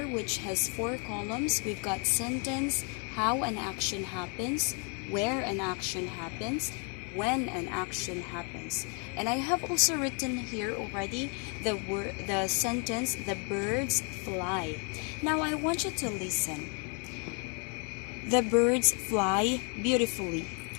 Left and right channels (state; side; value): quieter; right; 37.4 dB